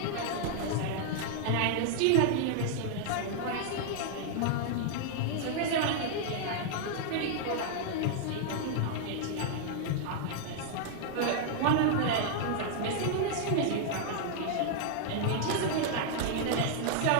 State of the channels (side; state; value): both; different; correlation -0.01